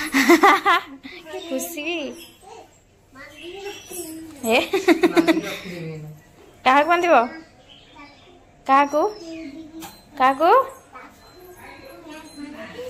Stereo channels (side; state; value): both; identical; correlation 1.00